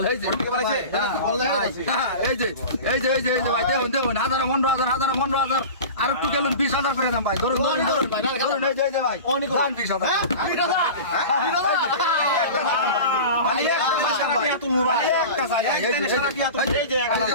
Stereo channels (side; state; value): both; inverted; correlation -0.33